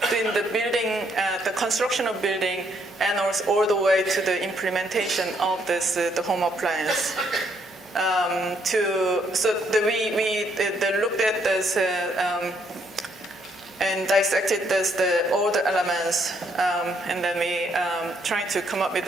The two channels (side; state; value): both; normal; correlation 0.71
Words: the building, the construction of building, and also all the way to the implementation of this the home appliance. We looked at this and dissected all the elements, and then we tried to come up with